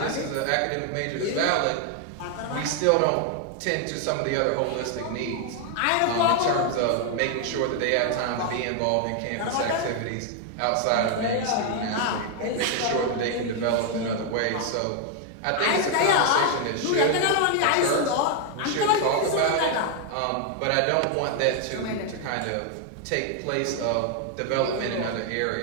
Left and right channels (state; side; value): different; both; correlation 0.00